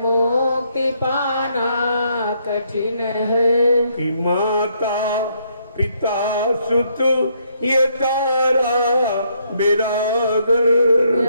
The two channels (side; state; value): both; inverted; correlation -0.72